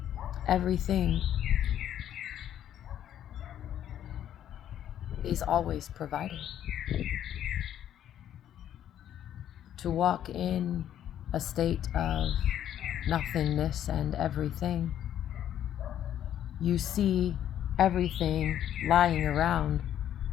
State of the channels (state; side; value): quieter; right; 10.7 dB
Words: everything is always provided. To walk in a state of nothingness and everything, you see everything lying around